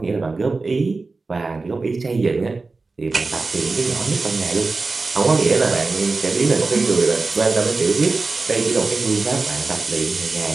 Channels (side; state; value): left; quieter; 3.8 dB